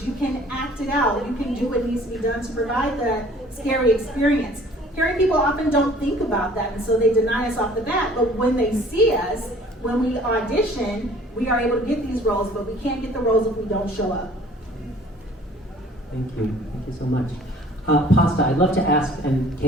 You can act it out. You can do what needs to be done to provide the scary experience. Hearing people often don't think about that, and so they deny us off the bat. But when they see us, when we audition, we are able to get these roles, but we can't get the roles if we don't show up. Thank you. Thank you so much. Pasta, I'd love to ask, and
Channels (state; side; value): normal; both; correlation 0.52